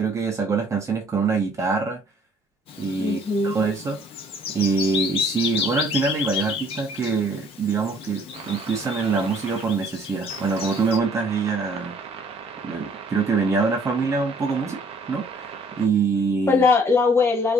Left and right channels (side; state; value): both; normal; correlation 0.59